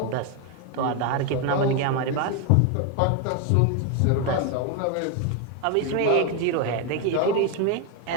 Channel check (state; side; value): different; both; correlation 0.01